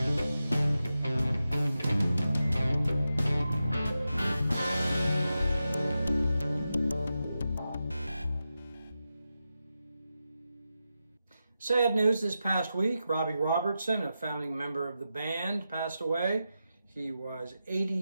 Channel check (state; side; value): inverted; both; correlation -0.90